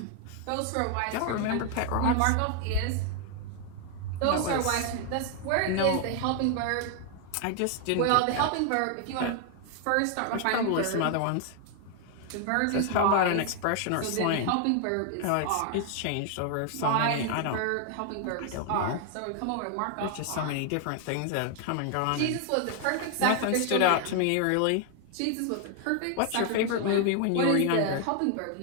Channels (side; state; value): both; different; correlation 0.00